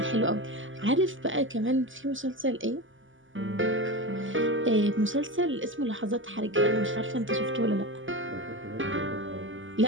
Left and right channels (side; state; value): left; late; 0.57 ms